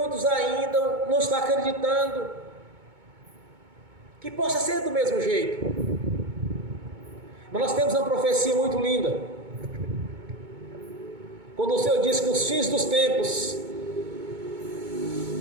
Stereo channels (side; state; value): left; late; 2.2 ms